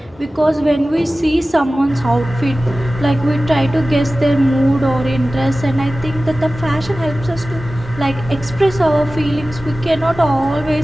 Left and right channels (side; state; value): both; normal; correlation 0.96